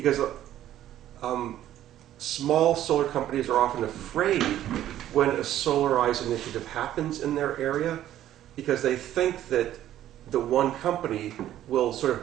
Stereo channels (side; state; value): left; quieter; 12.4 dB